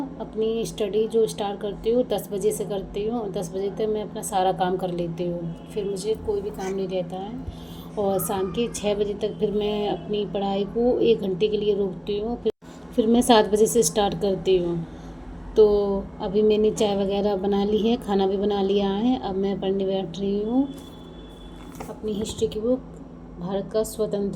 अपनी स्टडी जो स्टार्ट करती हूँ 10 बजे से करती हूँ। 10 बजे तक मैं अपना सारा काम कर लेती हूँ, फिर मुझे कोई भी काम नहीं रहता है। और शाम के 6 बजे तक फिर मैं अपनी पढ़ाई को 1 घंटे के लिए रोकती हूँ। फिर मैं 7 बजे से स्टार्ट करती हूँ। तो अभी मैंने चाय वगैरह बना ली है, खाना भी बना लिया है। अब मैं पढ़ने बैठ रही हूँ अपनी हिस्ट्री की बुक, भारत का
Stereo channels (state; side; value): identical; both; correlation 1.00